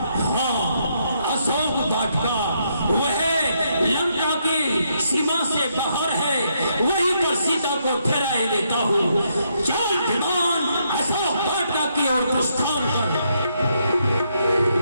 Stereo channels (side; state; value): both; inverted; correlation -0.76